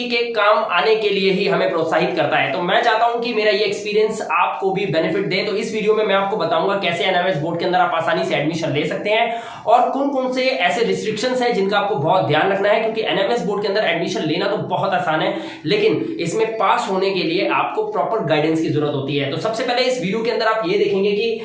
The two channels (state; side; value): identical; both; correlation 1.00